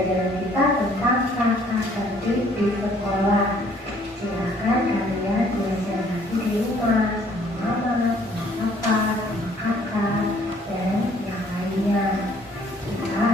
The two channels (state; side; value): normal; both; correlation 0.60